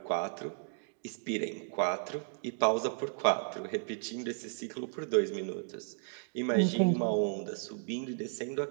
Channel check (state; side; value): silent; left; digital silence